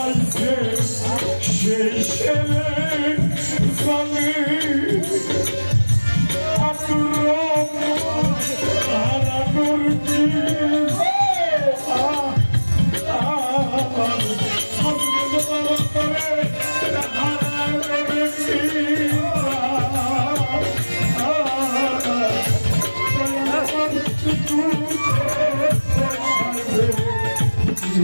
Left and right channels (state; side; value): inverted; both; correlation -1.00